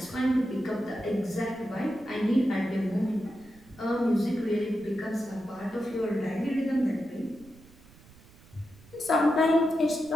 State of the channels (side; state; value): right; noise; rumble, 24 dB below the sound